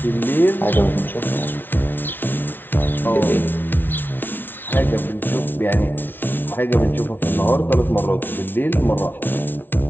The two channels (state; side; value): late; right; 0.096 ms